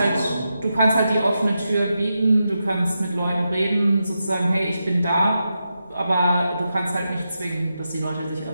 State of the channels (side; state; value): both; inverted; correlation -0.87